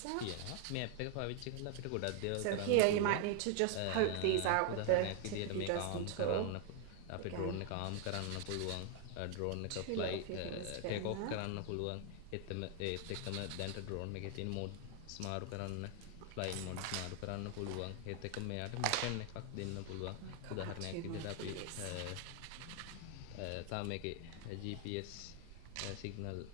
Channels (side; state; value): both; different; correlation 0.00